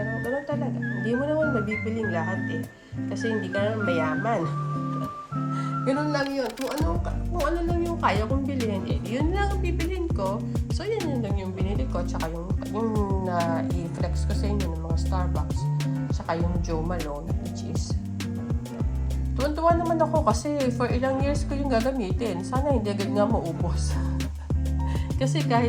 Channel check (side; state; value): both; identical; correlation 1.00